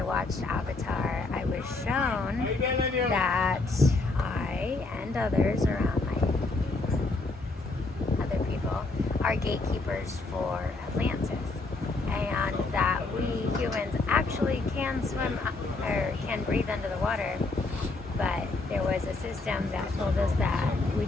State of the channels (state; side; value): quieter; right; 3.4 dB